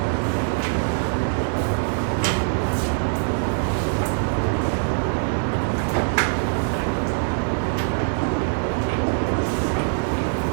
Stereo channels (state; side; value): silent; left; 62 dB below the other